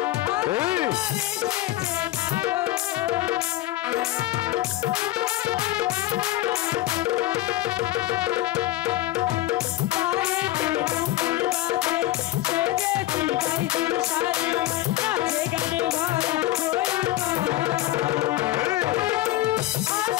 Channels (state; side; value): quieter; right; 16.1 dB